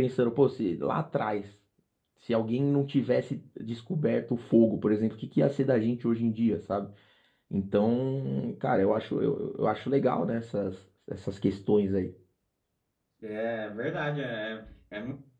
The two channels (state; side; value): identical; both; correlation 1.00